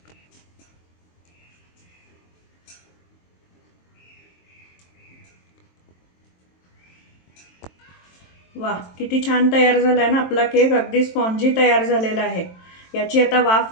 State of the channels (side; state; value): right; late; 23 ms